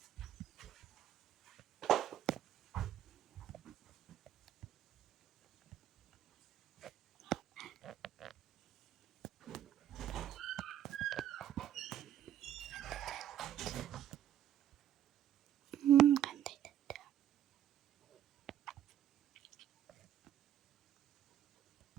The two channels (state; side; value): quieter; left; 10.8 dB